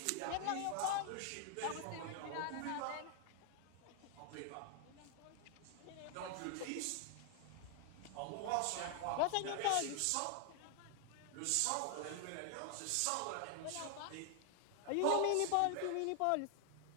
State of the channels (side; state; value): both; different; correlation 0.00